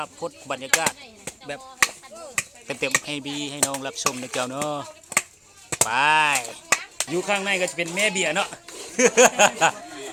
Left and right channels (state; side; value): identical; both; correlation 1.00